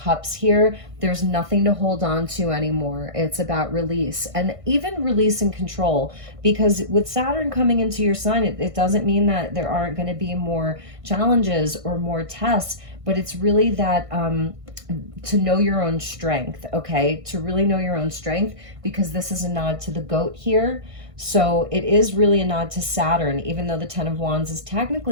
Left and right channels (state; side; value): late; left; 1.6 ms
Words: here? There's nothing to hold on to anymore. It's about release, and even release and control, because with Saturn coming into your sign, it doesn't mean that there aren't going to be more challenges or more tests, but it's really that to know your own strength, okay? To really know your own strength, because this is a nod to the goat here. So it is really a nod to Saturn, even though the Ten of Wands is